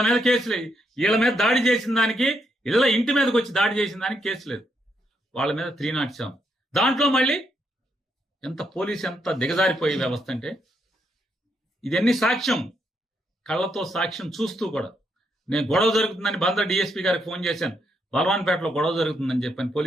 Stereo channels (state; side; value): normal; both; correlation 0.78